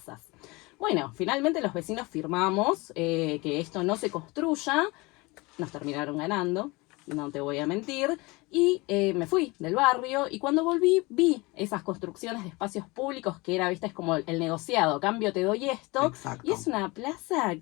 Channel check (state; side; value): quieter; right; 24.2 dB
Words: Bueno, finalmente los vecinos firmamos que esto no se construya, nos terminaron ganando, no te voy a mentir, y me fui del barrio y cuando volví vi esas construcciones de espacios públicos que era, viste, es como el negociado, cambio te doy esto. Exacto. Y es una plaza